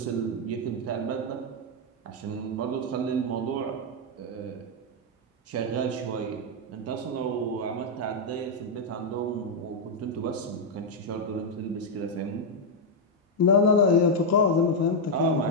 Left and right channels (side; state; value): both; normal; correlation -0.01